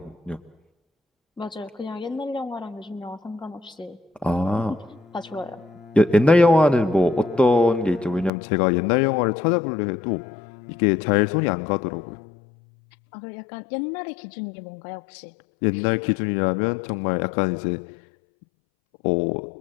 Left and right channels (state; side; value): drops out; right; at 8.3 s